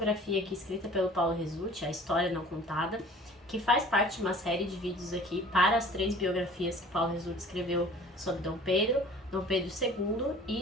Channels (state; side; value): normal; both; correlation 0.47